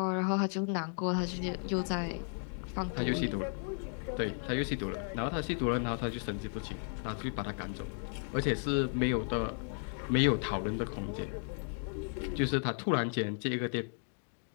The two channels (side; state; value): right; silent; 55 dB below the other